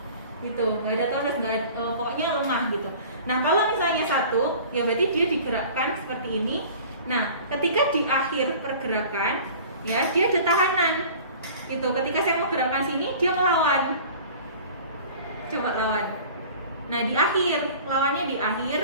gitu. Nggak ada tonus, pokoknya lemah gitu. Nah, kalau misalnya 1, ya berarti dia digerakkan seperti ini. Nah, ketika di akhir pergerakan, ya dia ada tahanan, gitu. Ketika saya mau gerakkan sini, dia melawan. Coba lawan. Nah, di akhir, lawannya di akhir,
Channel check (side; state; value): both; inverted; correlation -0.44